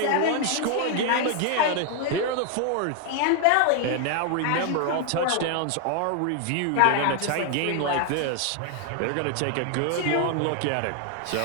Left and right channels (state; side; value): different; both; correlation 0.00